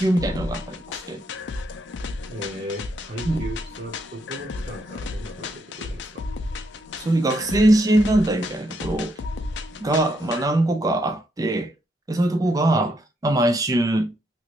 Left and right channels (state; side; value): normal; both; correlation 0.76